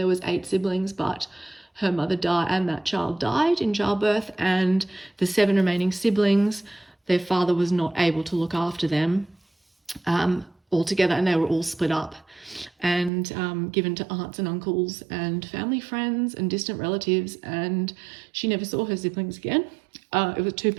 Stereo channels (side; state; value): left; drops out; at 13.1 s